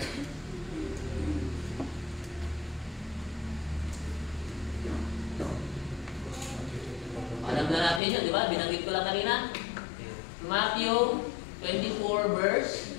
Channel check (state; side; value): drops out; right; at 8.0 s